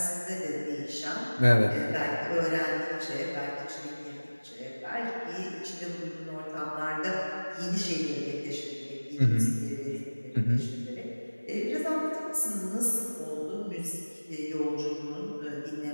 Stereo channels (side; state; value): both; inverted; correlation -1.00